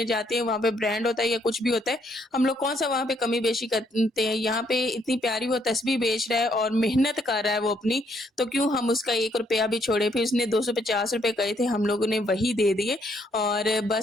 जाते हैं, वहाँ पे ब्रांड होता है या कुछ भी होता है, हम लोग कौन सा वहाँ पे कमी बेशी करते हैं। यहाँ पे इतनी प्यारी वो तस्बीह बेच रहा है और मेहनत कर रहा है वो अपनी, तो क्यों हम उसका 1 रुपया भी छोड़े। फिर उसने 250 रुपए कहे थे, हम लोगों ने वही दे दिए। और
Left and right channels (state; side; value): normal; both; correlation 0.70